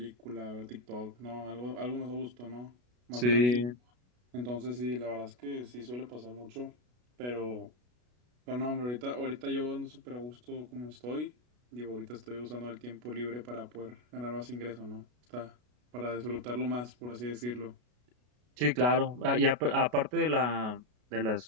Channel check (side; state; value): left; late; 33 ms